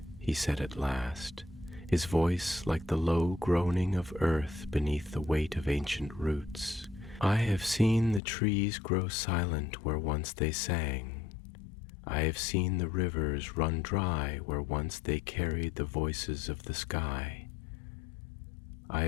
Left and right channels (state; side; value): drops out; right; at 8.2 s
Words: he said at last, his voice like the low groaning of earth beneath the weight of ancient roots. "I have seen the trees grow silent where once they sang. I have seen the rivers run dry where once they carried the voices of the sky. I